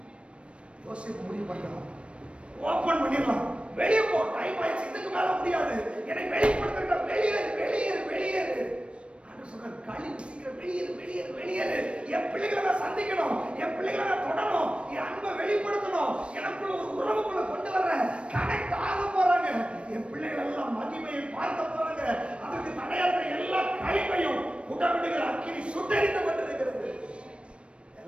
யோசிப்பு முடிவு பண்ணலாம், ஓபன் பண்ணிடலாம், வெளியே போ, டைம் ஆயிடுச்சு, இதுக்கு மேல முடியாது, என்னை வெளிப்படுத்த, வெளியேறு வெளியேறு வெளியேறு. கழிவு சீக்கிரம் வெளியேறு வெளியேறு வெளியேறு. என் பிள்ளைகளை நான் சந்திக்கணும், என் பிள்ளைகளை நான் தொடணும், என் அன்பை வெளிப்படுத்தணும், எனக்குள்ள ஒரு உறவுக்குள்ள கொண்டு வர்றேன், கனெக்ட் ஆக போறாங்க, என் பிள்ளைகள் எல்லாம் மகிமையை பார்க்க போறாங்க. அதற்கு தடையாக எல்லா கழிவையும் உடவிடுகிற அக்கினி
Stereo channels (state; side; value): late; left; 0.059 ms